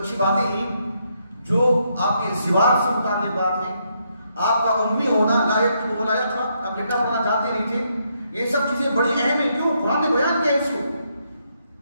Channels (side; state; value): both; inverted; correlation -0.76